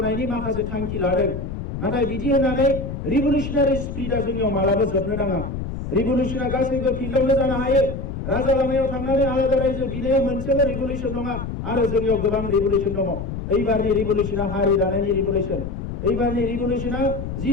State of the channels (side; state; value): left; noise; rumble, 6 dB below the sound